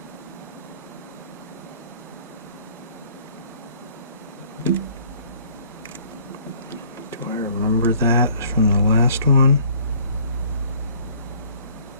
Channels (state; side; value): inverted; both; correlation -0.57